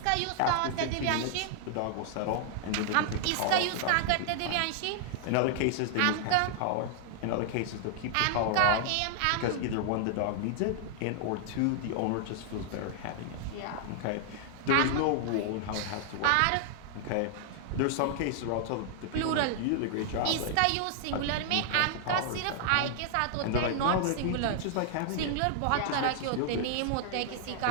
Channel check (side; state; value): both; different; correlation -0.01